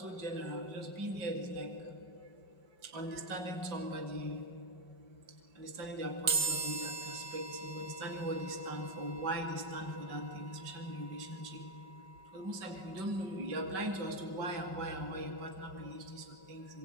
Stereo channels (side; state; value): left; late; 5.3 ms